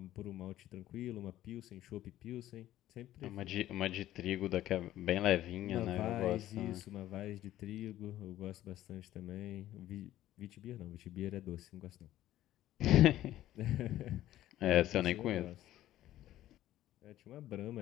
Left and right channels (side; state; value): right; quieter; 13.7 dB